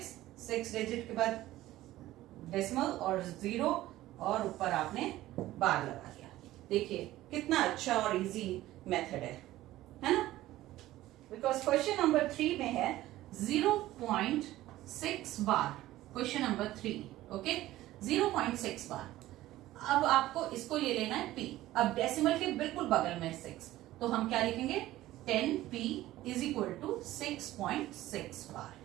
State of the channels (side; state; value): left; quieter; 15.6 dB